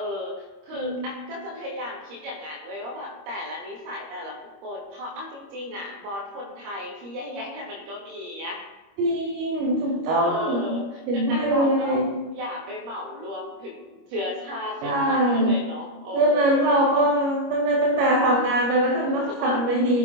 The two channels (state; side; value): late; left; 25 ms